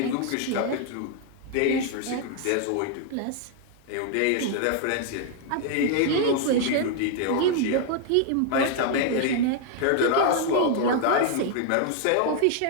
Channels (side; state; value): both; different; correlation 0.00